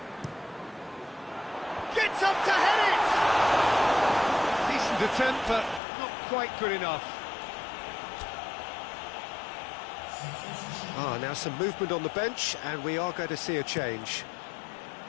Gets up to head it! Decent attempt, but not quite good enough. Now some movement on the bench, and we are going to see a change.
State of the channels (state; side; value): drops out; right; at 5.8 s